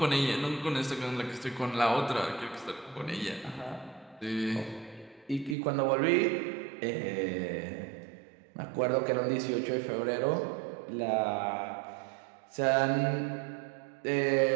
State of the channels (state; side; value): drops out; left; at 5.6 s